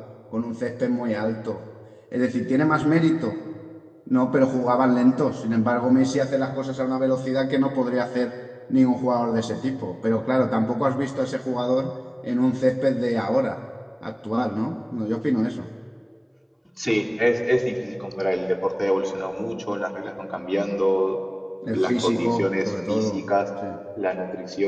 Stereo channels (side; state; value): both; identical; correlation 1.00